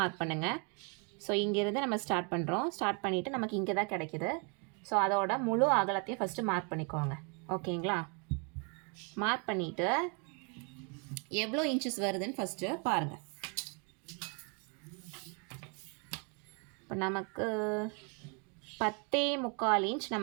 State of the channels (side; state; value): left; quieter; 35.2 dB